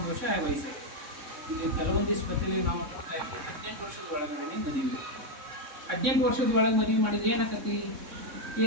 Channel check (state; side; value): late; left; 3.6 ms